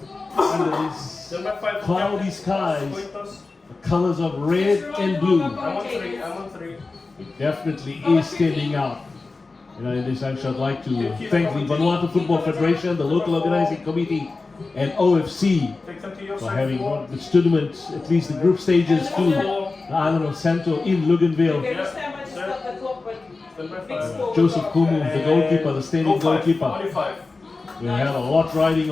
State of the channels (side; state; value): right; quieter; 3.8 dB